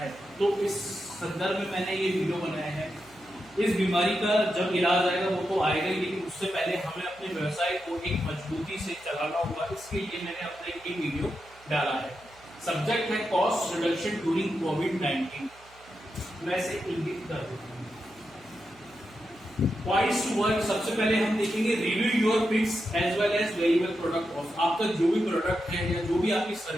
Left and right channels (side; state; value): right; noise; hum, 26 dB below the sound